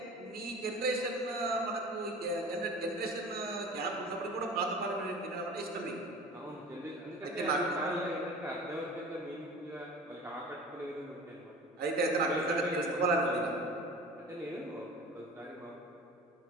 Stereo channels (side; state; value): both; normal; correlation 0.39